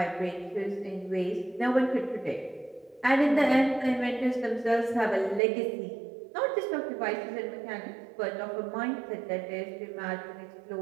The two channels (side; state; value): left; drops out; at 5.4 s